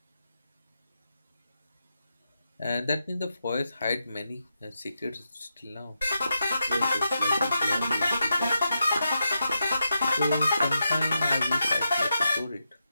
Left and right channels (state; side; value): inverted; both; correlation -0.86